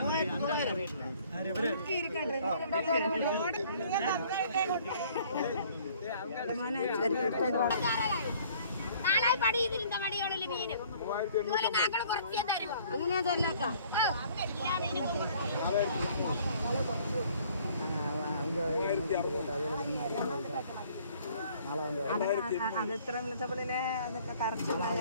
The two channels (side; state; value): both; inverted; correlation -0.57